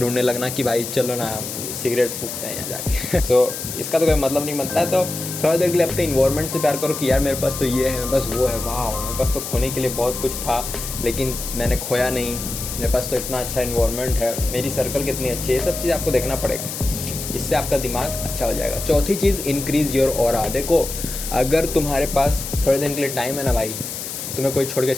लगना कि भाई चलो ना सिगरेट फूकते हैं यहाँ जाके तो इसका तो कोई मतलब नहीं बनता है। तो थोड़ा देर के लिए अपने इन्वायरमेंट से प्यार करो कि यार मेरे पास तो ये है, मेरे पास वो है, वाह मेरे पास तो खोने के लिए बहुत कुछ था लेकिन मैंने खोया नहीं, मेरे पास तो इतना अच्छा इन्वायरमेंट है, मेरी सर्कल कितनी अच्छी है, ये सब चीज़ आपको देखना पड़ेगा, इससे आपका दिमाग अच्छा हो जाएगा। चौथी चीज़, इंक्रीज़ योर ऑरा। देखो, अगर तुम्हारे पास थोड़े दिन के लिए टाइम है ना भाई, तुम्हें कोई छोड़ के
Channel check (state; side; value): noise; left; hiss, 7 dB below the sound